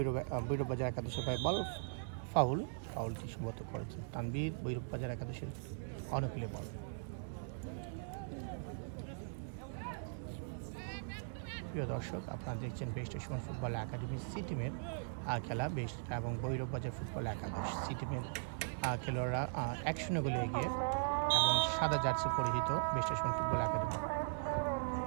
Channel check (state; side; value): silent; left; digital silence